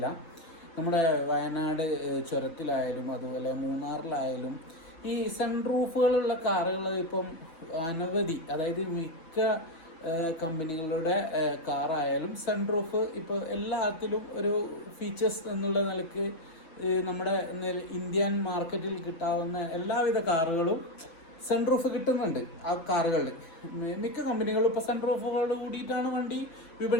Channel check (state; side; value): late; right; 6.1 ms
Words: നമ്മുടെ വയനാട് ചുരത്തിലായാലും അതുപോലെ മൂന്നാറിലായാലും ഈ സൺറൂഫുകളുള്ള കാറുകൾ ഇപ്പം അനവധി, അതായത് മിക്ക കമ്പനികളുടെ കാറായാലും സൺറൂഫ് ഇപ്പോൾ എല്ലാത്തിലും ഒരു ഫീച്ചേഴ്സ് എന്നുള്ള നിലയ്ക്ക് നമ്മുടെ ഇന്ത്യൻ മാർക്കറ്റിൽ കിട്ടാവുന്ന എല്ലാവിധ കാറുകളും സൺറൂഫ് കിട്ടുന്നുണ്ട്. ആ കാറുകളിൽ മിക്ക കമ്പനികളും ഇപ്പോൾ സൺറൂഫുകൾ കൂടിയിട്ടാണ് വണ്ടി